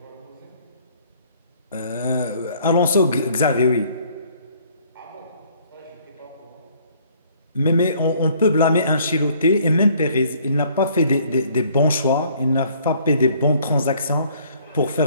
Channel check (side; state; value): both; inverted; correlation -0.60